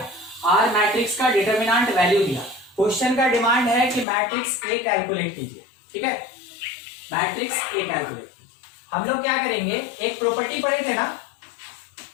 और मैट्रिक्स का डिटरमिनेंट वैल्यू दिया। क्वेश्चन का डिमांड है कि मैट्रिक्स A कैलकुलेट कीजिए, ठीक है, मैट्रिक्स A कैलकुलेट। हम लोग क्या करेंगे, एक प्रॉपर्टी पढ़े थे ना,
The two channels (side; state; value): right; drops out; at 4.0 s